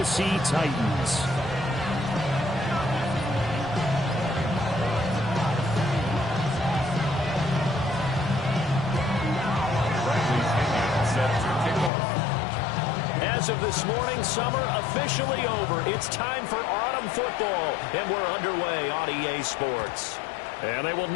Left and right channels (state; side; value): drops out; right; at 11.9 s